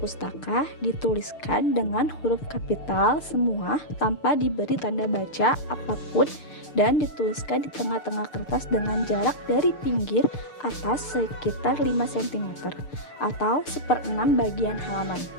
dituliskan dengan huruf kapital semua tanpa diberi tanda baca apapun dan dituliskan di tengah-tengah kertas dengan jarak dari pinggir atas sekitar 5 cm atau 1/6 bagian halaman.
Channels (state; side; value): late; right; 6.7 ms